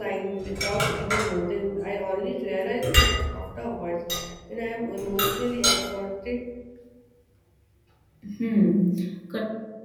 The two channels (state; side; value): identical; both; correlation 1.00